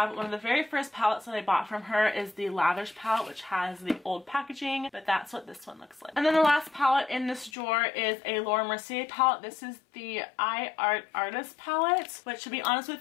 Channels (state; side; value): drops out; right; at 7.5 s